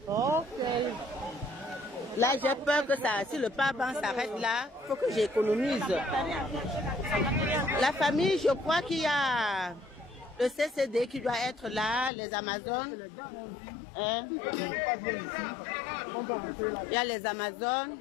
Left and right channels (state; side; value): drops out; right; at 12.1 s